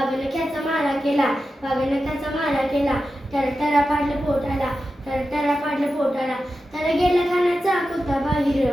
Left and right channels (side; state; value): both; normal; correlation 0.91